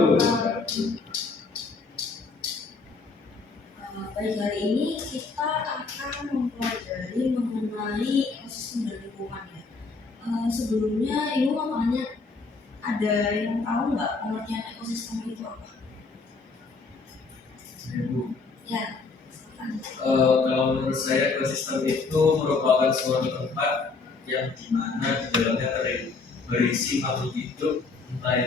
wabarakatuh. Baik, hari ini kita akan mempelajari mengenai ekosistem dan lingkungan ya. Sebelumnya Ibu mau tanya, ada yang tahu nggak pengertian ekosistem itu apa? Ibu. Ya. Kalau menurut saya ekosistem itu merupakan suatu tempat yang dimana di dalamnya berisi makhluk hidup, entah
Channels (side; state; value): right; quieter; 4.3 dB